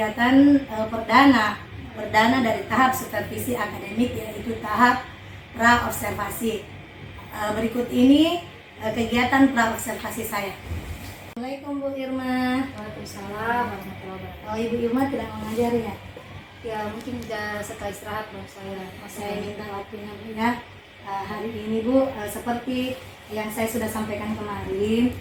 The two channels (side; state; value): both; identical; correlation 1.00